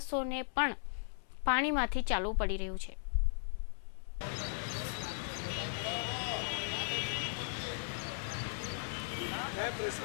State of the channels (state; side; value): silent; right; 53 dB below the other